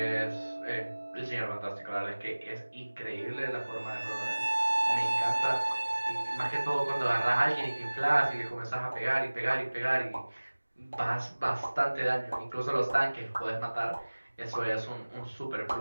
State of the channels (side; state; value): both; inverted; correlation -1.00